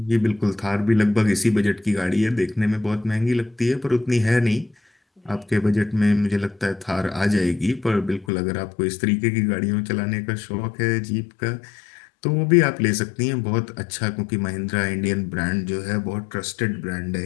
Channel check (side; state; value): right; drops out; at 8.2 s